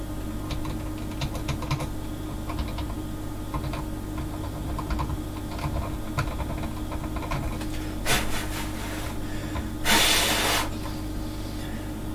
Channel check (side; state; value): both; identical; correlation 1.00